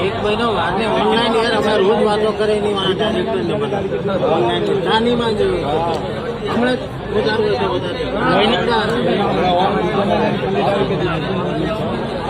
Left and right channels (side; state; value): both; identical; correlation 1.00